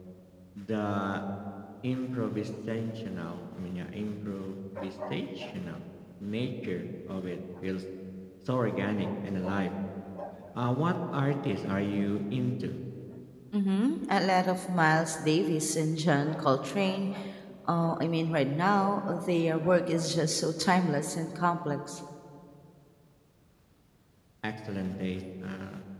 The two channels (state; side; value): identical; both; correlation 1.00